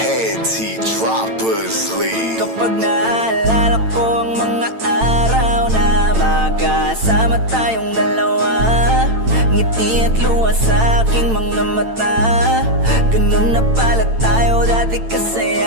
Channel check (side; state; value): left; late; 8.9 ms